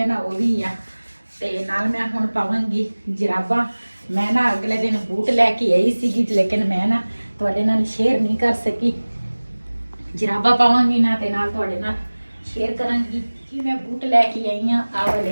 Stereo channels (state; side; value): inverted; both; correlation -1.00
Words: ਨਾ ਉਹ ਵੀ ਆ ਤੇ ਨਾਲ ਮੈਂ ਹੁਣ ਪਾਵਾਂਗੀ ਜਰਾਬਾਂ ਮੈਂ ਨਾ ਅਗਲੇ ਦਿਨ ਬੂਟ ਲੈ ਕੇ ਆਈ ਸੀਗੀ ਲੇਕਿਨ ਮੈਂ ਨਾ ਤੁਹਾਡੇ ਨਾਲ ਸ਼ੇਅਰ ਨਹੀਂ ਕਰ ਸਕੀ ਜਰਾਬਾਂ ਪਾਵਾਂਗੀ ਨਾ ਤੇ ਨਾਲ ਤੁਹਾਡੇ ਨਾਲ ਸ਼ੇਅਰ ਕਰਾਂਗੀ ਕਿ ਮੈਂ ਬੂਟ ਲੈ ਕੇ ਆਈ ਆ ਆ